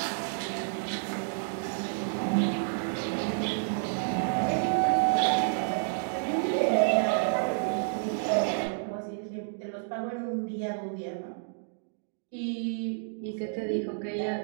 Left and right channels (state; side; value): silent; left; digital silence